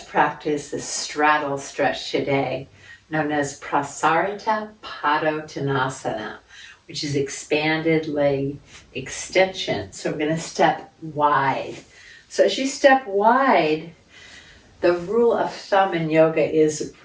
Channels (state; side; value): identical; both; correlation 1.00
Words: the straddle stretch today, known as Prasarita Padottanasana, which is expanded leg extension. So we're going to step wide. So as you step wide, the rule of thumb in yoga is